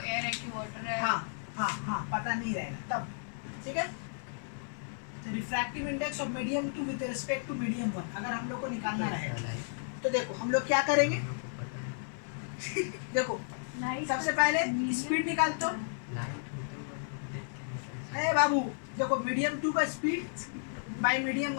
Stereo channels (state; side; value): silent; right; digital silence